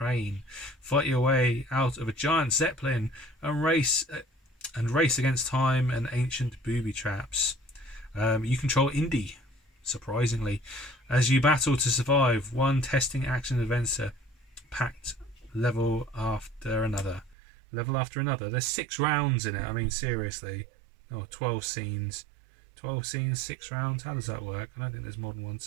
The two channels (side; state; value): left; drops out; at 17.4 s